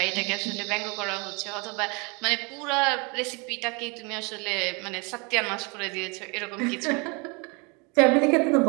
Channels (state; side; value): quieter; left; 30.2 dB